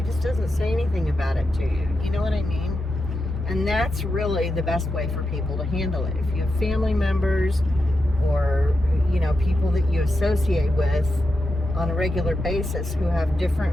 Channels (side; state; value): both; normal; correlation 0.88